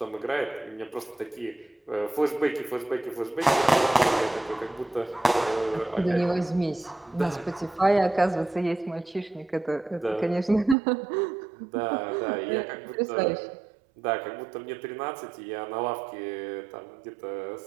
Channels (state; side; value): drops out; left; at 10.8 s